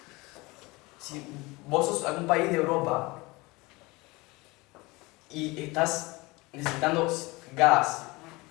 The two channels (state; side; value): quieter; right; 23.5 dB